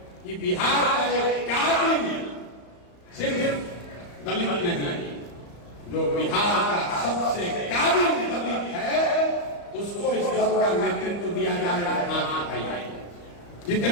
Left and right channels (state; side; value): late; right; 34 ms